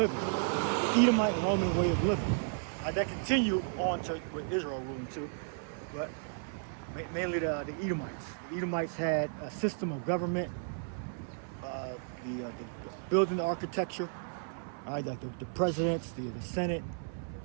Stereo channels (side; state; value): left; silent; 55 dB below the other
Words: the Edomite Roman way of living. That continued on to with Israel ruling too, but mainly the Edomites. The Edomites had a system of government, the building architecture, like the presidents, the Senate,